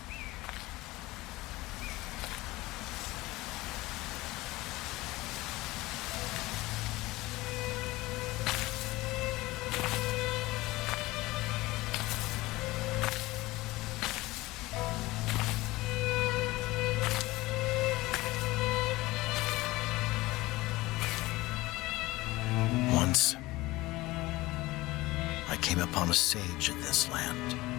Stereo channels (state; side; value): quieter; right; 19.7 dB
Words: Upon a sage in this land